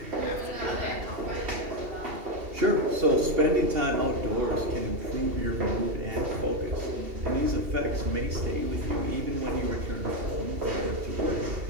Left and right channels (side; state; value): left; late; 2.7 ms